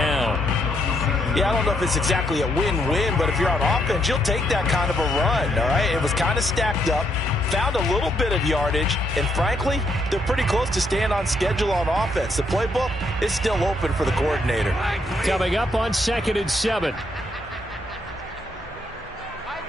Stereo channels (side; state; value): both; normal; correlation 0.74